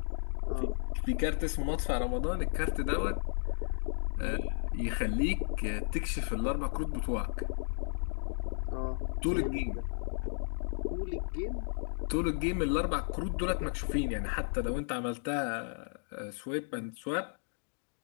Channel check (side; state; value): right; silent; digital silence